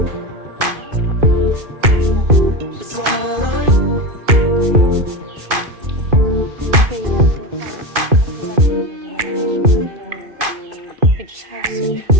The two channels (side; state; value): left; late; 2.5 ms